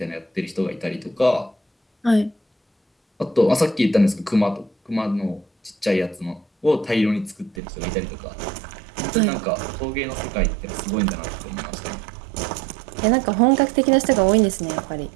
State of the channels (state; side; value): drops out; left; at 7.6 s